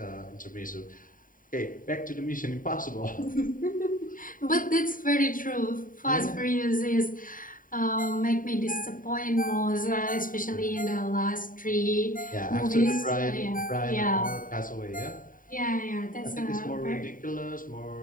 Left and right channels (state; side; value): late; right; 0.39 ms